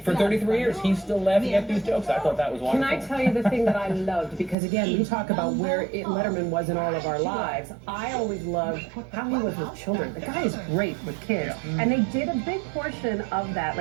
For 33 years, he's still laughing at these jokes. I thought that was wonderful. Can I tell you the thing that I loved? Because again, we talk about where Letterman was in all of our lives. I always loved how he was with children. The guy is great with kids. And they did a big portion of that,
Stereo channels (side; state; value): left; drops out; at 4.5 s